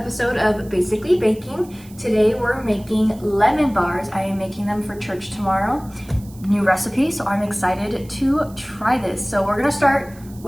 of Basically Baking. Today we're making lemon bars. I am making them for church tomorrow. New recipe, so I'm excited to try this. So we're gonna start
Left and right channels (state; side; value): noise; right; hiss, 24 dB below the sound